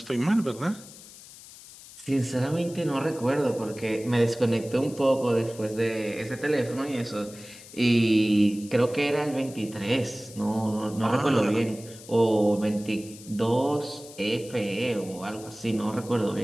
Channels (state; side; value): noise; left; hiss, 18 dB below the sound